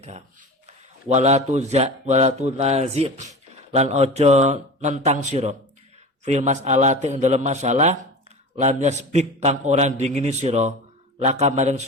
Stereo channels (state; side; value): normal; both; correlation 0.32